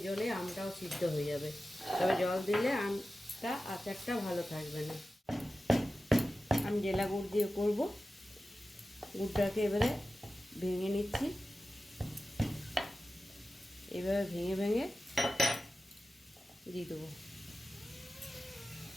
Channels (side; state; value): both; normal; correlation 0.93